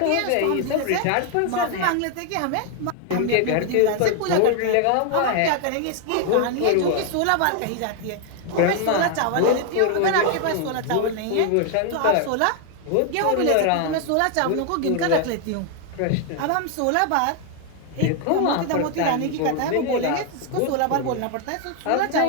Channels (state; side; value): different; both; correlation 0.00